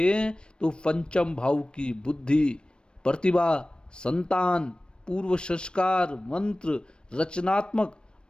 तो पंचम भाव की बुद्धि, प्रतिभा, संतान, पूर्व संस्कार, मंत्र, रचनात्मक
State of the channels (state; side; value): late; right; 0.054 ms